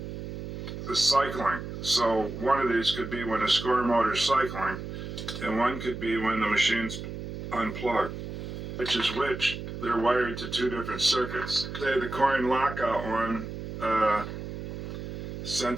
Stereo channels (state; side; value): noise; right; hum, 7 dB below the sound